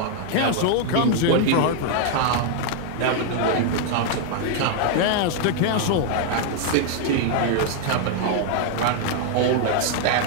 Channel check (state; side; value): different; both; correlation 0.00